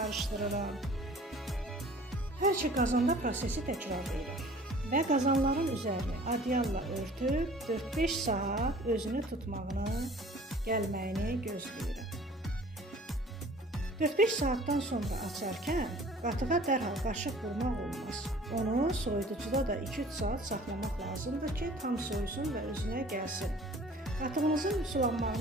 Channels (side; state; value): both; normal; correlation 0.48